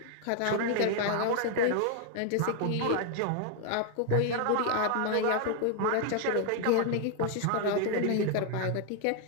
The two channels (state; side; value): different; both; correlation 0.00